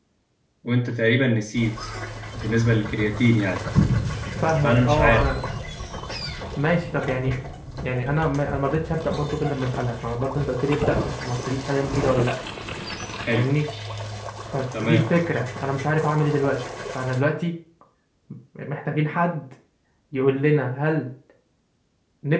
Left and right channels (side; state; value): both; identical; correlation 1.00